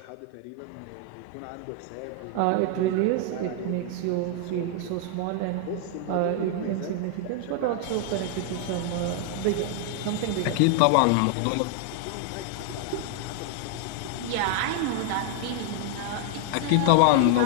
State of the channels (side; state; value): both; different; correlation 0.00